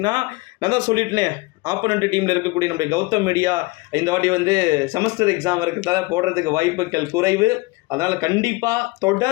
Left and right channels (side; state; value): right; quieter; 23.6 dB